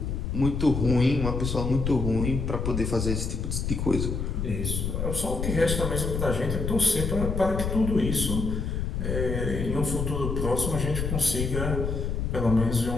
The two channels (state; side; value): noise; left; rumble, 2 dB below the sound